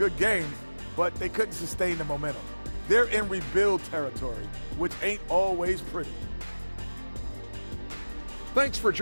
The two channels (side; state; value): both; inverted; correlation -1.00